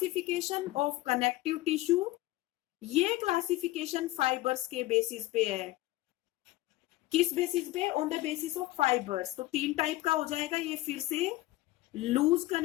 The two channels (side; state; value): right; quieter; 18.0 dB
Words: ऑफ कनेक्टिव टिश्यू। ये क्लासिफिकेशन फाइबर्स के बेसिस पे है। किस बेसिस पे, on the basis of fibres. तो 3 टाइप का हो जाएगा ये फिर से, loose